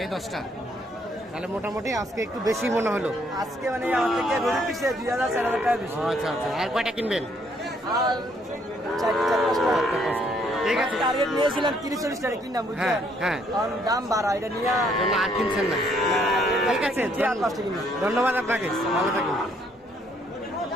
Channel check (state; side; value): normal; both; correlation 0.68